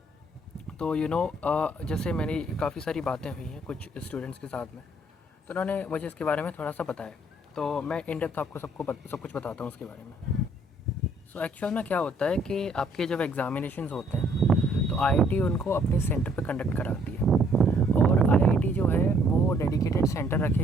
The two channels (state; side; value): normal; both; correlation 0.65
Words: तो जैसे मेरी काफ़ी सारी बातें हुई हैं कुछ स्टूडेंट्स के साथ में, तो उन्होंने मुझे इसके बारे में थोड़ा सा बताया। तो मैं इन डेप्थ आपको सब कुछ बताता हूँ उसके बारे में। सो एक्चुअल में क्या होता है कि आपके जब एग्ज़ामिनेशंस होते हैं तो आईआईटी उनको अपने सेंटर पे कंडक्ट कराती है। और आईआईटी जो है वो डेडिकेटेड सेंटर रखे